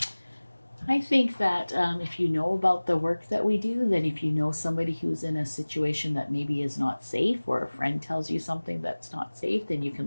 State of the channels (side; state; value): both; inverted; correlation -1.00